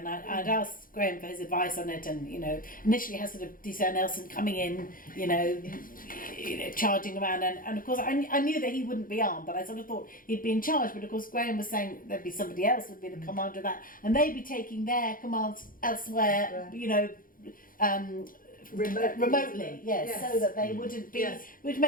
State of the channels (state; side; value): late; right; 0.40 ms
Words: I'd asked Graham for his advice on it, and initially has sort of D.C. Nelson coming in, charging around, and of course I knew that he wouldn't be armed, but I sort of thought he'd be in charge. But of course Graham was saying there'd be somebody else would be the commander of that, and they'd be taking their commands elsewhere, remotely, yes, so that they wouldn't be, which